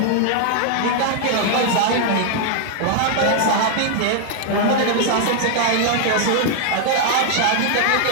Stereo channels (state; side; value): different; both; correlation 0.00